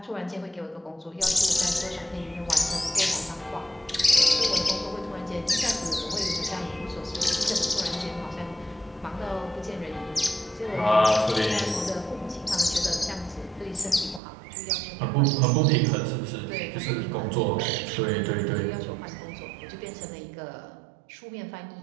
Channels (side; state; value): left; drops out; at 14.2 s